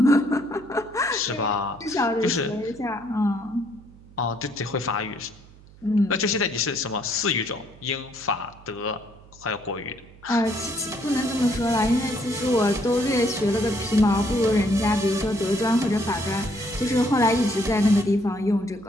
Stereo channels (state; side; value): noise; right; hum, 23 dB below the sound